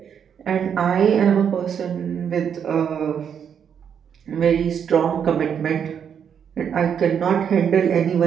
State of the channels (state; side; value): quieter; left; 7.9 dB